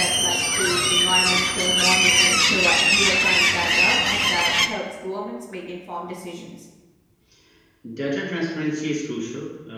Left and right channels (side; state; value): both; identical; correlation 1.00